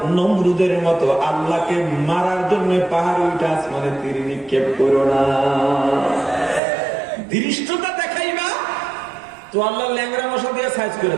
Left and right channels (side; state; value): left; drops out; at 6.6 s